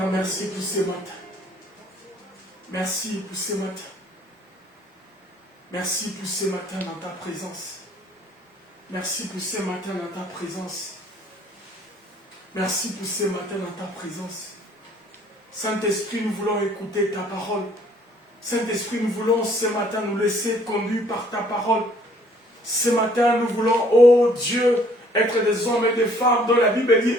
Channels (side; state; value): both; normal; correlation 0.60